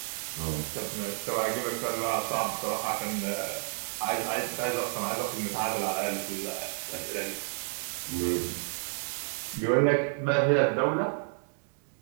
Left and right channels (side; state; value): left; silent; 57 dB below the other